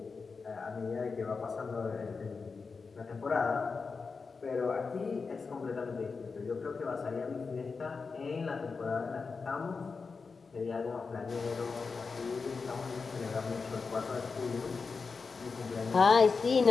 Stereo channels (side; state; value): right; quieter; 4.8 dB